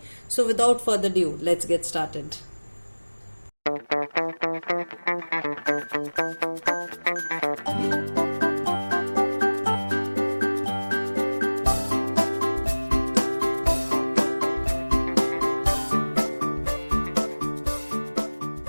So without further due let's get started.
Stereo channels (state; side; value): inverted; both; correlation -1.00